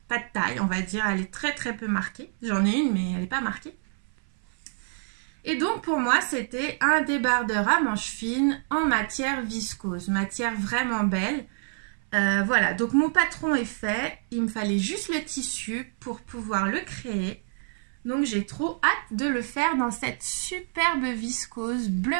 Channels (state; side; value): silent; left; 60 dB below the other